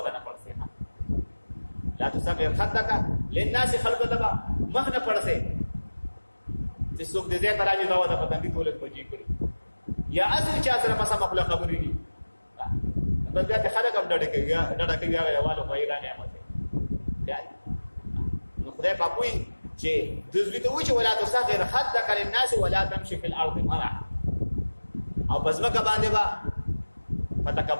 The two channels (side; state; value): both; inverted; correlation -1.00